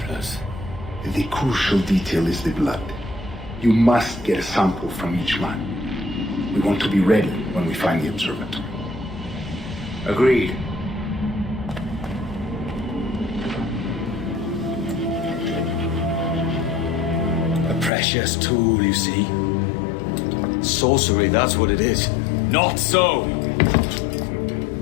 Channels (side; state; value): right; drops out; at 17.9 s